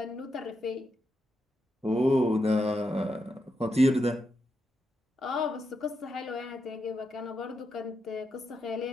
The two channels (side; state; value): both; normal; correlation 0.84